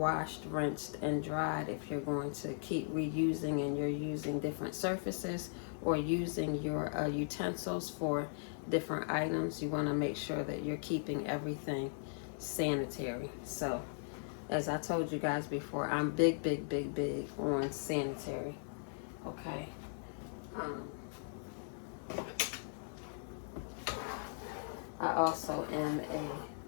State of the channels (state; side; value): silent; right; digital silence